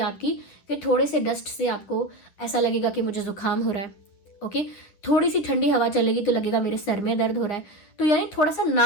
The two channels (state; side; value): late; right; 10 ms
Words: कि थोड़े से डस्ट से आपको ऐसा लगेगा कि मुझे जुकाम हो रहा है। ओके, थोड़ी सी ठंडी हवा चलेगी तो लगेगा मेरे सर में दर्द हो रहा है। तो यानी थोड़ा सा